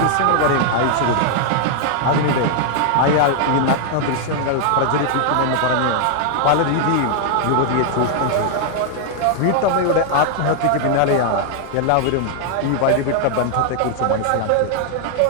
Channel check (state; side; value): different; both; correlation 0.00